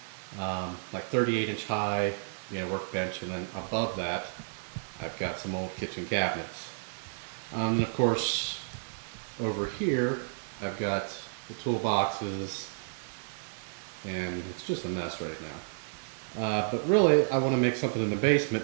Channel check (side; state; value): left; silent; digital silence